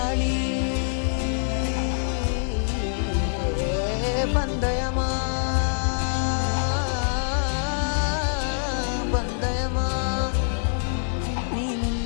பந்தயமா பந்தயமா, நீ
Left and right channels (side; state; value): right; silent; 62 dB below the other